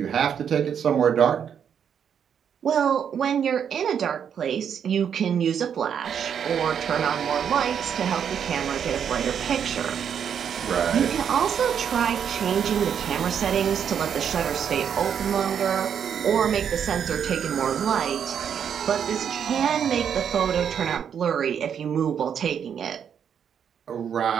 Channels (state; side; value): quieter; left; 8.0 dB